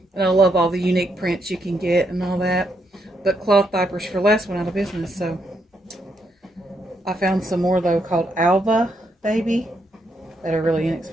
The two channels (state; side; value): normal; both; correlation 0.78